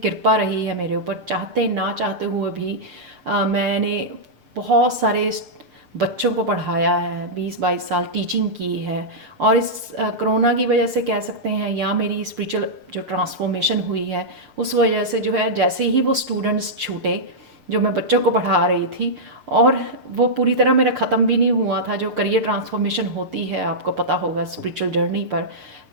रही है मेरे ऊपर, चाहते ना चाहते हुए भी। मैंने बहुत सारे बच्चों को पढ़ाया है, 20-22 साल टीचिंग की है। और इस कोरोना की वजह से कह सकते हैं, या मेरी स्पिरिचुअल जो ट्रांसफॉर्मेशन हुई है उस वजह से, जो है जैसे ही वो स्टूडेंट्स छूटे जो मैं बच्चों को पढ़ा रही थी, और वो पूरी तरह मेरा ख़त्म भी नहीं हुआ था, जो करियर ट्रांसफॉर्मेशन होती है आपको पता होगा स्पिरिचुअल जर्नी पर,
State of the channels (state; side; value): late; left; 7.1 ms